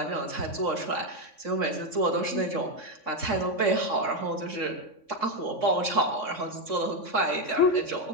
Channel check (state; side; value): late; right; 3.5 ms